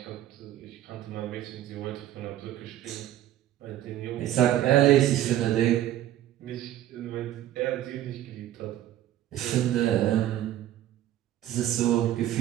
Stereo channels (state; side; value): quieter; left; 12.8 dB